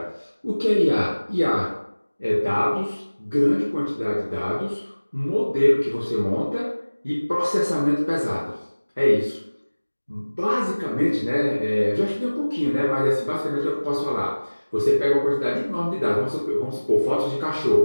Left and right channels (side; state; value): both; inverted; correlation -1.00